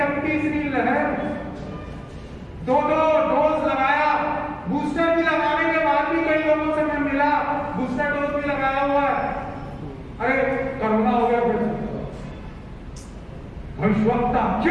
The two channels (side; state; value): both; identical; correlation 1.00